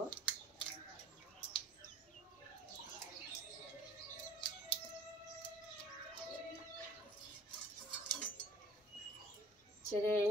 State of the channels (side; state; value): both; normal; correlation 0.50